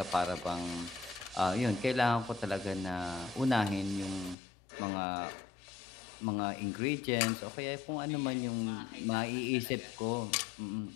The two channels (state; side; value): drops out; right; at 4.4 s